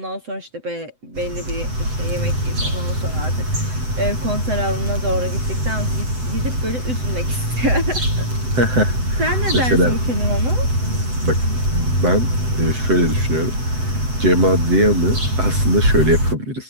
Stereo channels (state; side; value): late; left; 7.9 ms